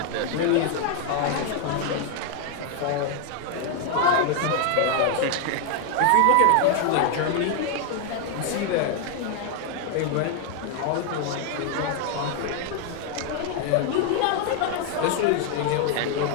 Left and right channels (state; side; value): different; both; correlation 0.00